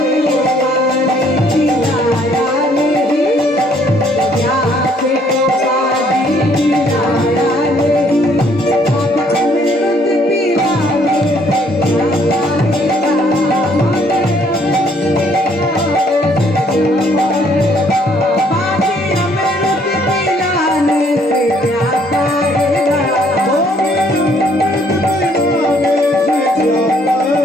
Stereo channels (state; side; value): normal; both; correlation 0.64